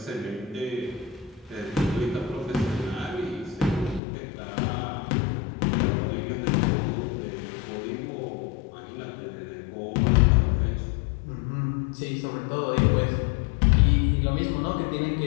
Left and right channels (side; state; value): right; drops out; at 4.0 s